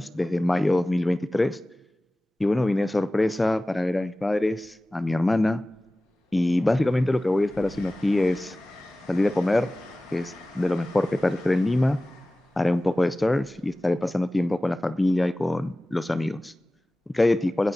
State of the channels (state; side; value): normal; both; correlation 0.97